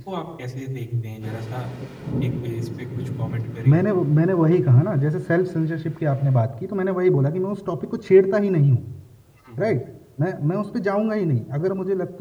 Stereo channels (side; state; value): both; identical; correlation 1.00